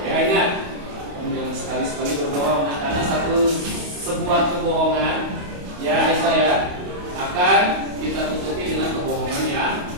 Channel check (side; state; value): left; late; 28 ms